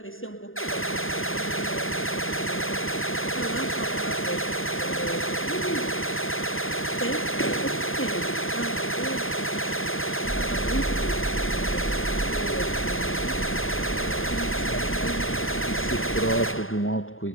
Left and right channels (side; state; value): right; late; 0.59 ms